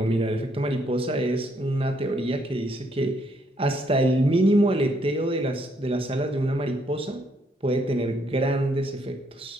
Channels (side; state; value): both; normal; correlation 0.71